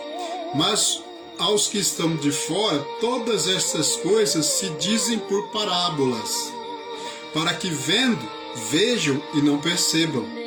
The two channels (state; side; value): identical; both; correlation 1.00